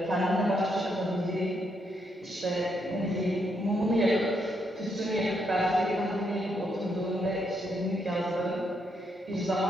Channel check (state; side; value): normal; both; correlation 0.77